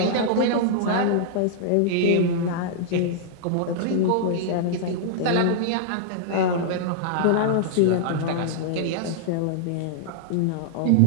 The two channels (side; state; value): both; different; correlation -0.02